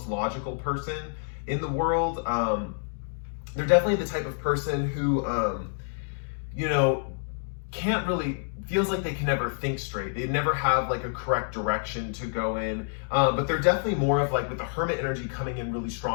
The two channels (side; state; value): right; silent; digital silence